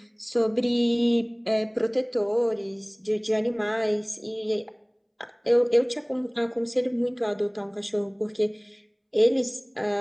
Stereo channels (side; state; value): both; identical; correlation 1.00